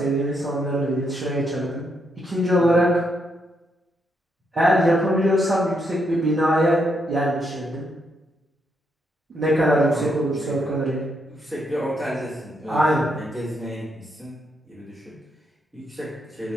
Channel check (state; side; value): normal; both; correlation 0.78